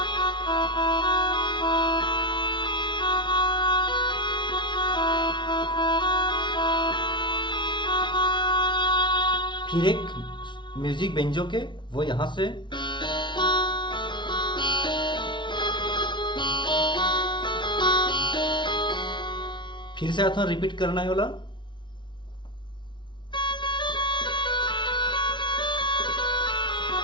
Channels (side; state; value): right; late; 0.23 ms